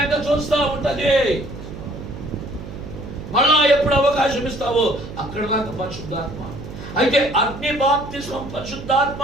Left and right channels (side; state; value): right; noise; hum, 11 dB below the sound